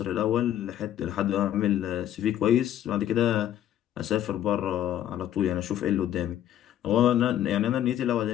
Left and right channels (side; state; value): right; quieter; 11.5 dB